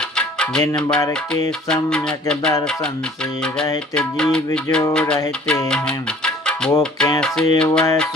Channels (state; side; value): normal; both; correlation 0.53